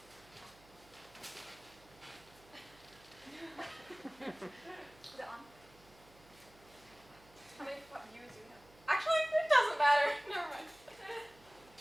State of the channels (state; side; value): noise; right; hum, 25 dB below the sound